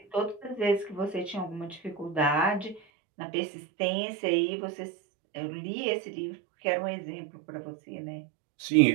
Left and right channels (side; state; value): left; drops out; at 2.8 s